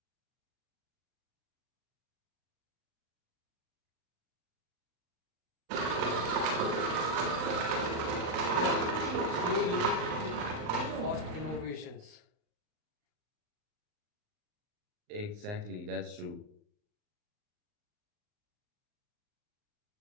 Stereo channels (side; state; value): left; late; 39 ms